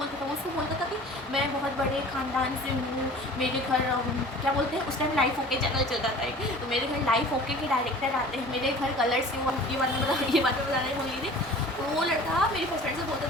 था, वो उसको बोलता था कि मैं बहुत बड़े ख़ानदान से हूँ, मेरे घर क्या बोलते हैं उस टाइम लाइफ ओके चैनल चलता था एक, तो मेरे घर लाइफ ओके के डायरेक्टर आते हैं, मेरे घर कलर्स से। ये बात मैं बताने बोल रही थी। तो वो लड़का मेरी बेस्ट फ्रेंड से बोलता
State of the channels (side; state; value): both; normal; correlation 0.44